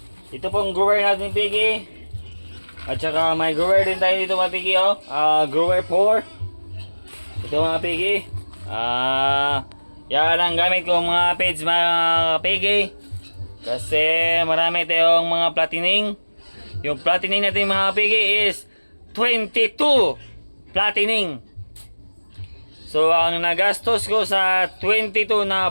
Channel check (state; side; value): inverted; both; correlation -1.00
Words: Ito pong grower natin pigi. At saka may grower din tayo dito mga kapigi, oh. Grower 4. Ito mga kapigi. Yan ang gamit ko mga page mga kapigi. Kasi marami tayong mga platining. Yung platining natin mga kapigi is 22 platining. So ang nagastos ko sa 22